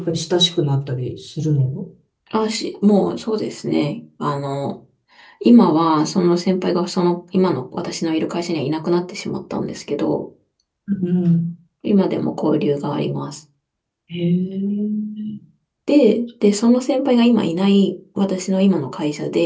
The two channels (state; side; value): identical; both; correlation 1.00